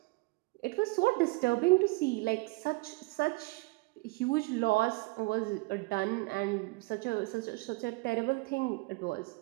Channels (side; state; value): left; quieter; 25.7 dB